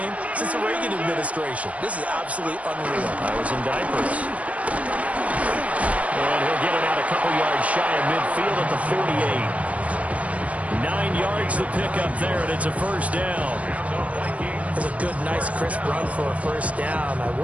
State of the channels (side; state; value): left; late; 0.066 ms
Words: since the Reagan administration. This is absolutely unreal. I was in diapers. And he'll get it out a couple yards shy of midfield at the 48. 9 yards to pick up there, and it's a first down. It's a good, nice, crisp run for a first down. I